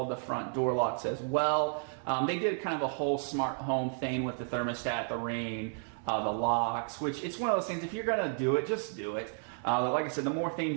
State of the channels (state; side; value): silent; left; 56 dB below the other